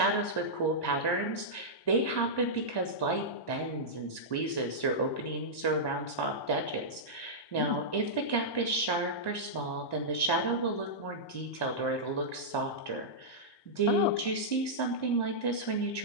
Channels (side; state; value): right; late; 1.1 ms